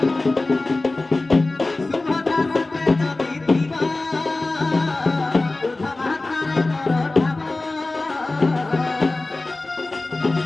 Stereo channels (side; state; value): right; quieter; 3.1 dB